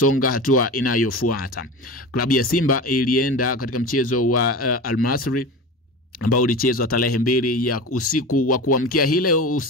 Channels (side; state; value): both; normal; correlation 0.30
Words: hatua inayofuata. Klabu ya Simba ilienda katika mchezo wa Al Masry ambao ulichezwa tarehe 2 ya usiku wa kuamkia hile